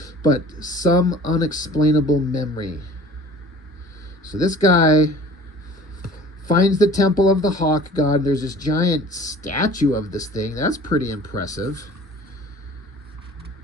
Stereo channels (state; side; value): normal; both; correlation 0.46